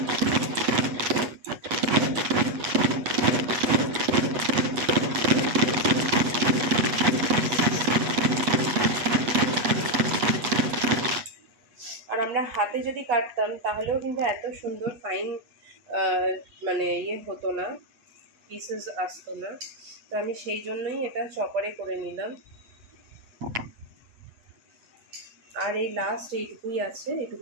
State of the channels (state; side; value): late; left; 8.3 ms